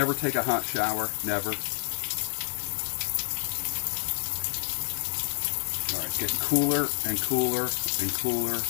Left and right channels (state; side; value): silent; right; 58 dB below the other